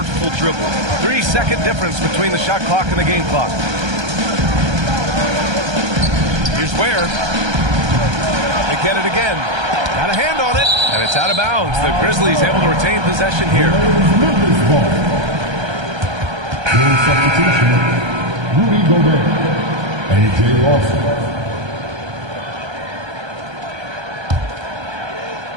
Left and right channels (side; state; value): left; late; 1.3 ms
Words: dribble. 3-second difference between the shot clock and the game clock. Here's Ware. They get it again. Got a hand on it, and it's out of bounds. The Grizzlies able to retain possession here. Substitution, Rudy Gobert, A.J. Lawson.